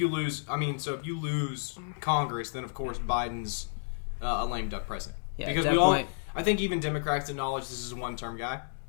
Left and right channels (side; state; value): right; silent; digital silence